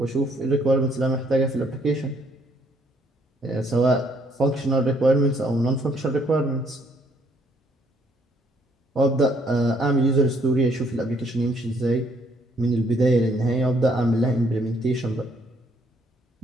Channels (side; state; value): both; normal; correlation 0.67